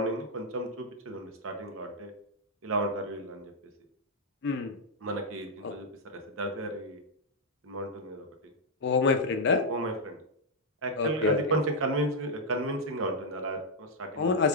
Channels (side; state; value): both; normal; correlation -0.03